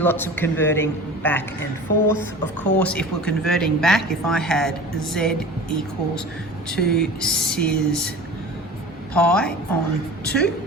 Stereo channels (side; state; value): both; normal; correlation 0.37